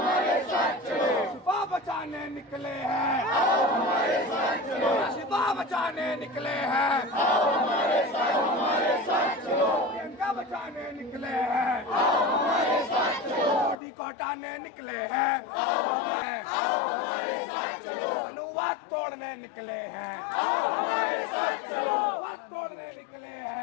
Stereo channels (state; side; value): drops out; right; at 13.8 s